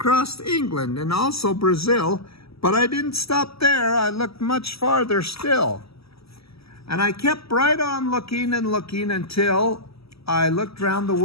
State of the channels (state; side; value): late; right; 0.77 ms